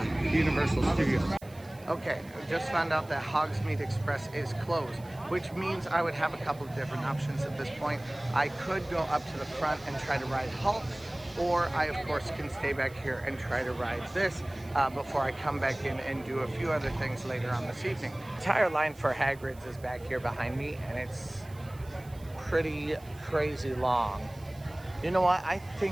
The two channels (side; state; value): right; noise; hiss, 24 dB below the sound